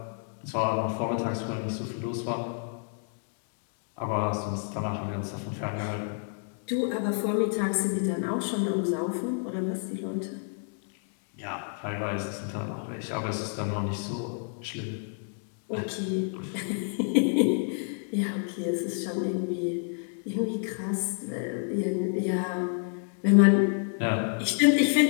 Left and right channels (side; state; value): right; silent; 58 dB below the other